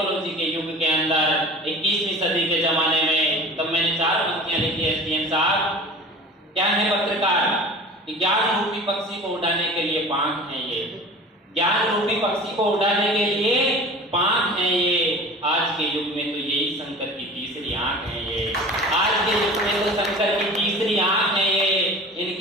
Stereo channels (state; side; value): normal; both; correlation 0.39